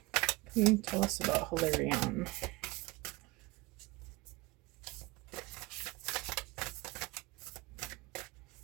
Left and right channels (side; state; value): left; quieter; 22.6 dB